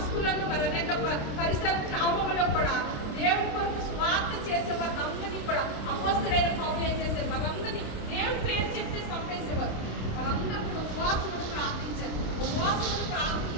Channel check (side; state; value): right; late; 26 ms